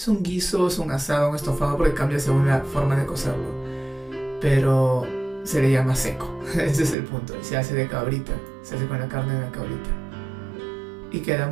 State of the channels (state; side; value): drops out; left; at 7.0 s